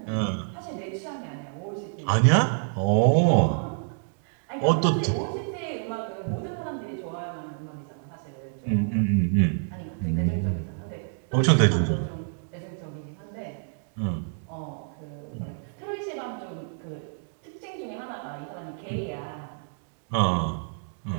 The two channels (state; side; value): silent; left; digital silence